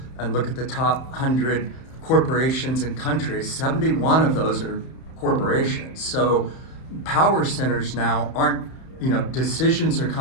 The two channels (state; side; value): late; right; 31 ms